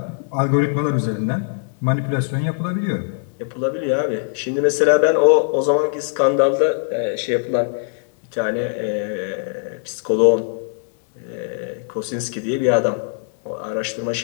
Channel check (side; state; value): right; silent; 65 dB below the other